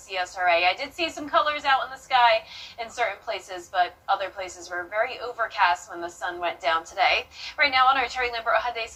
I did see some colors out in the sky in certain places, but other places were very overcast when the sun went down today. Right now on our Terry Lambert Hyundai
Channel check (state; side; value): identical; both; correlation 1.00